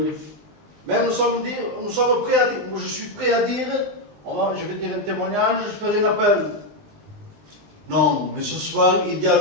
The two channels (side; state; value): left; late; 20 ms